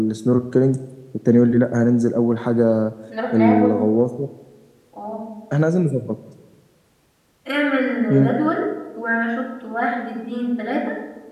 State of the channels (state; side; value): identical; both; correlation 1.00